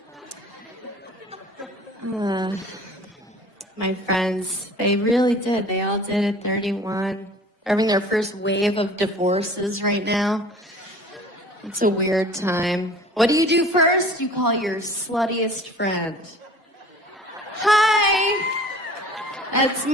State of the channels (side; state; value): both; normal; correlation 0.46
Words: My friends, they really did. They all did at 31. They're having their first wave of divorces right now. It's a weird time. What do you do first? You call your sluttiest friend. Hi! That's